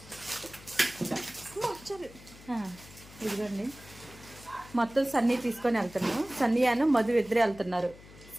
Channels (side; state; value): left; noise; hum, 20 dB below the sound